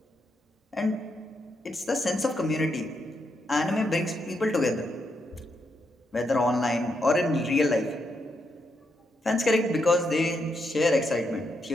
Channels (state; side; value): normal; both; correlation 0.81